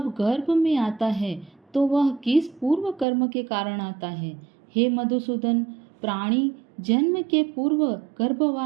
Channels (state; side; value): drops out; left; at 3.1 s